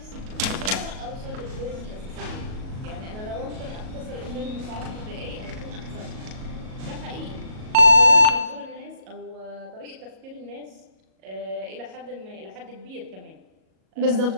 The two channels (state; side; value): late; left; 37 ms